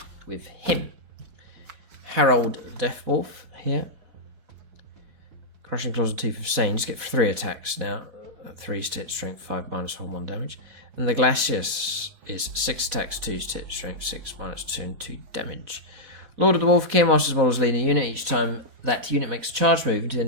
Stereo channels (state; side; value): late; left; 4.1 ms